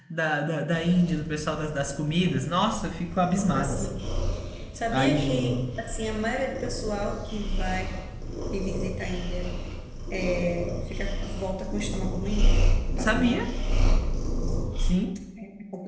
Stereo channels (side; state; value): both; identical; correlation 1.00